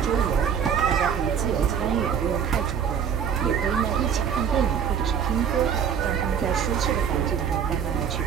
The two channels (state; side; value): quieter; left; 7.8 dB